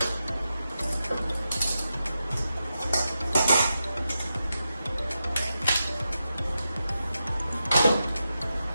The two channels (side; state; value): both; inverted; correlation -0.89